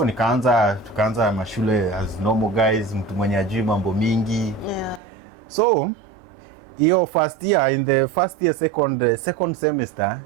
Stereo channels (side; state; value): left; drops out; at 5.0 s